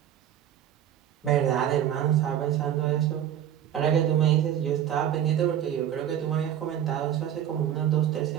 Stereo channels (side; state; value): left; quieter; 10.5 dB